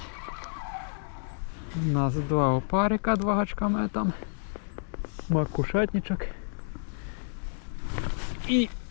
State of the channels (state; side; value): silent; right; digital silence